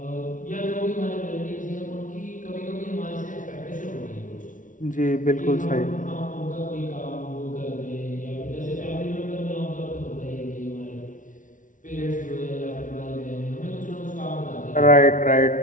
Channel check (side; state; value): right; late; 0.38 ms